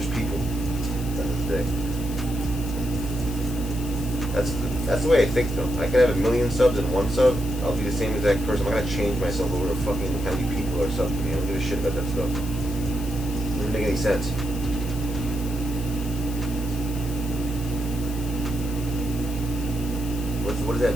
just people. That's the way I think though. I could have 1 million subs and 1 sub. I'll be the same exact person. I'm not gonna change myself over to fucking how many people are subbed to me. I don't give a shit about that stuff. It doesn't make any sense. What does that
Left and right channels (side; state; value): left; noise; hiss, 15 dB below the sound